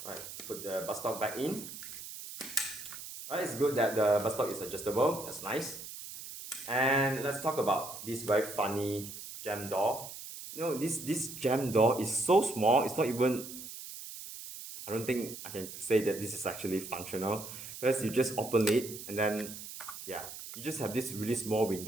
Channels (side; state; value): right; noise; hiss, 11 dB below the sound